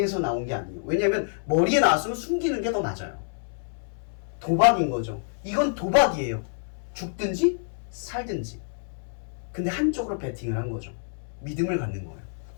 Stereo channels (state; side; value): silent; right; 60 dB below the other